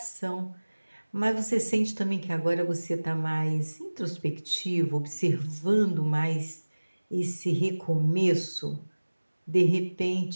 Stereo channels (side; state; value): both; inverted; correlation -1.00